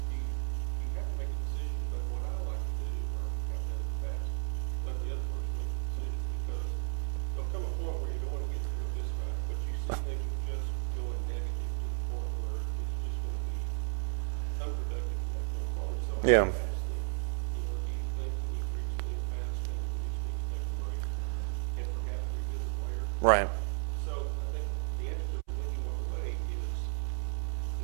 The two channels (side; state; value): left; silent; 55 dB below the other